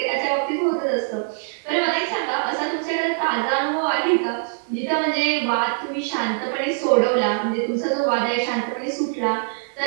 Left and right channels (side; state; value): left; silent; digital silence